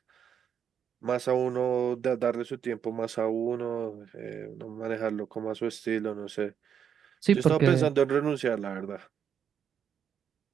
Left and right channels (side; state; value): left; quieter; 8.0 dB